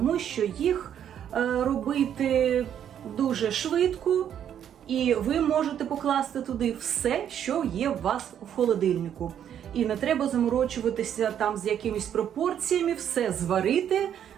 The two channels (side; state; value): left; quieter; 9.5 dB